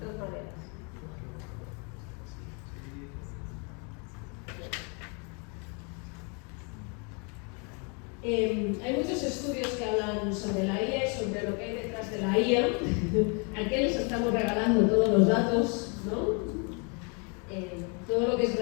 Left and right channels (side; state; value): right; quieter; 35.2 dB